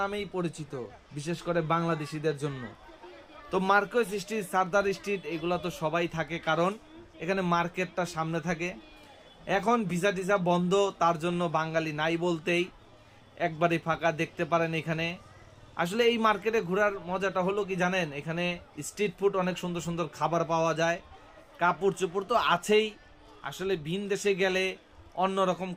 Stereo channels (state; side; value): identical; both; correlation 1.00